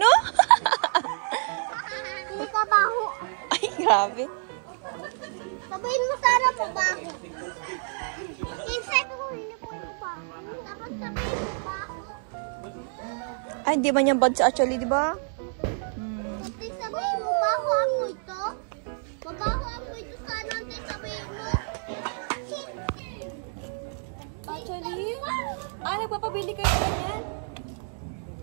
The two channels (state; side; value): silent; left; 59 dB below the other